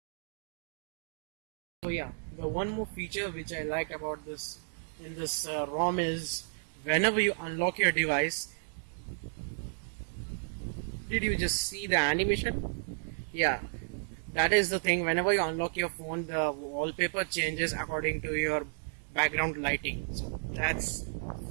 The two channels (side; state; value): left; silent; digital silence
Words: So yeah, the one more feature which I liked about this in this ROM is whenever you unlock your device, did you just see the animation? Yeah, that is the thing. Whenever you unlock your phone, the wallpaper changes according to your background lighting. So that's